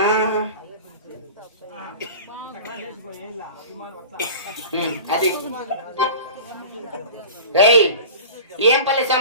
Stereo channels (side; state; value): both; inverted; correlation -0.37